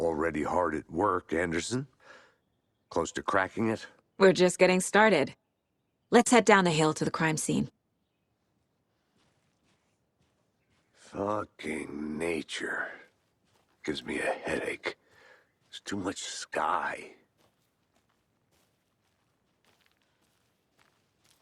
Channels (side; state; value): both; identical; correlation 1.00